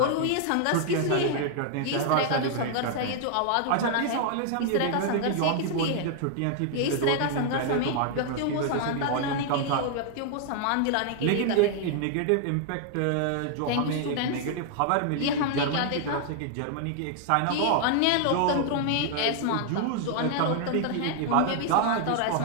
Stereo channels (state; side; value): different; both; correlation 0.00